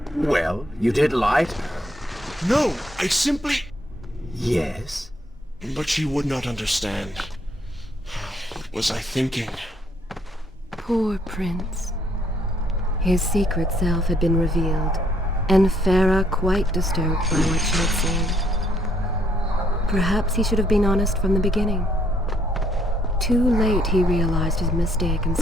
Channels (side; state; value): both; normal; correlation 0.68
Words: Well, you did lie to her. No, I simply... Yes? But she would not understand. What was I thinking? Poor Prince. His secret self had been revealed, and Farah quite disturbed by what she had seen. Perhaps he should have been honest from the beginning. Too late he realized his mistake in